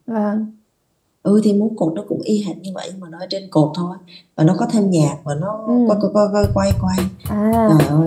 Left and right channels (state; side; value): identical; both; correlation 1.00